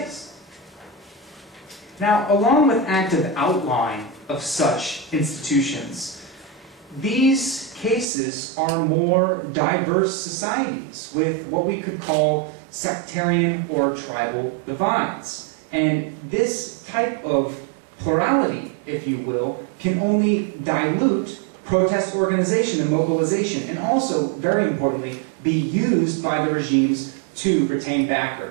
Now, along with active outline of such institutions, these cases are more diverse societies with what we could call sectarian or tribal divides. And this type of plurality, if you will, can only dilute protest organization and mobilization, and also, very importantly, be used by the regimes to retain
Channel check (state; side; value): drops out; left; at 8.1 s